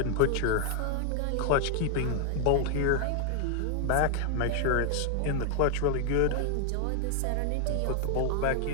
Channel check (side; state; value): both; different; correlation 0.00